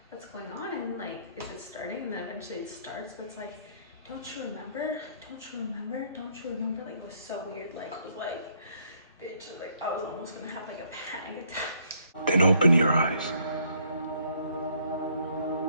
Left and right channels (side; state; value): both; inverted; correlation -0.66